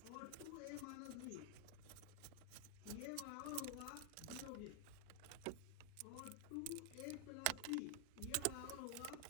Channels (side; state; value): both; different; correlation 0.00